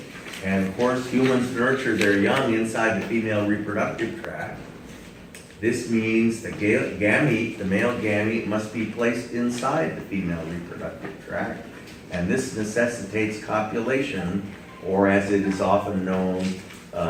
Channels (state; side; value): identical; both; correlation 1.00